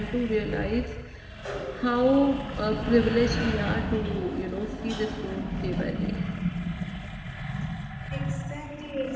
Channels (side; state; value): both; identical; correlation 1.00